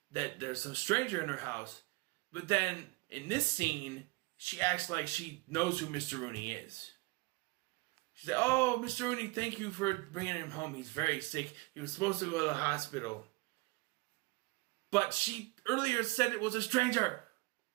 that there's some stranger in her house. But then, in this scene, she acts like she knows who Mr. Rooney is. She said, "Oh, Mr. Rooney, thank you for bringing him home. He's very sick. He was supposed to go to the hospital." But she earlier said it was a stranger.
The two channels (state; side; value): quieter; left; 24.5 dB